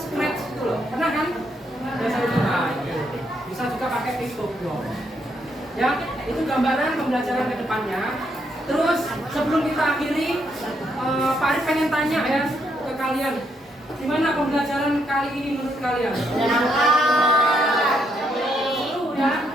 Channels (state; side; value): normal; both; correlation 0.76